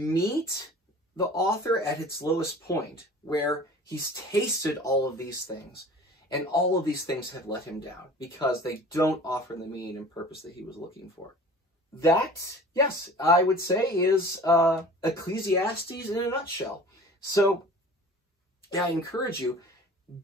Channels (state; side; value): normal; both; correlation 0.43